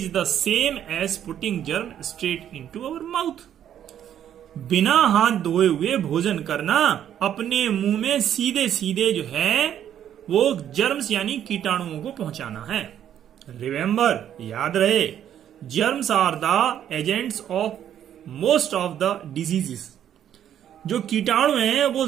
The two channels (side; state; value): left; quieter; 10.2 dB